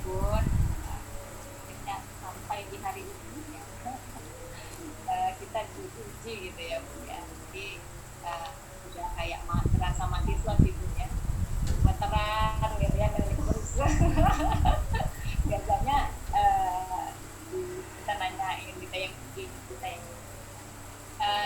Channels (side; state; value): both; identical; correlation 1.00